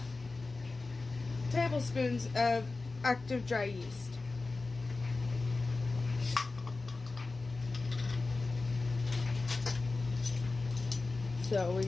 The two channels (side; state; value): right; quieter; 3.6 dB